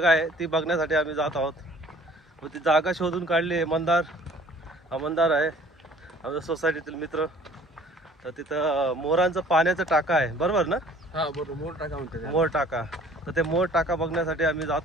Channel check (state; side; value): normal; both; correlation 0.53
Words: आहे, ती बघण्यासाठी आम्ही जात आहोत। व ती जागा शोधून काढली आहे मंदार आहे आमच्या सोसायटीतील मित्र। तर तिथं मोरांचं पाण्याचं टाका आहे, बरोबर ना? हा बरोबर, मोर टाका म्हणतात। मोर टाका, तर ते मोर टाका बघण्यासाठी आम्ही